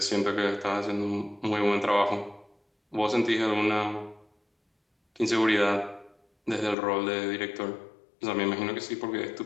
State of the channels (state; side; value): drops out; right; at 6.8 s